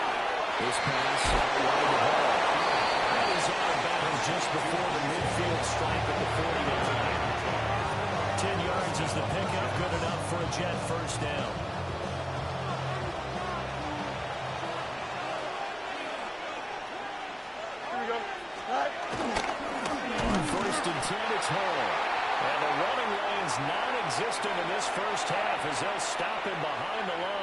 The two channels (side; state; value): both; identical; correlation 1.00